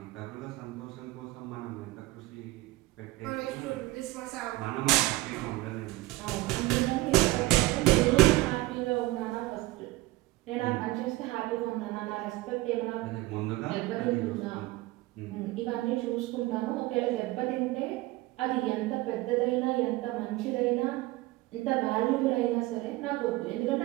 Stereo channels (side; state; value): left; quieter; 19.6 dB